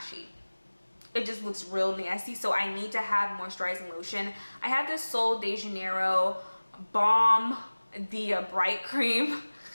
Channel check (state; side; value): inverted; both; correlation -1.00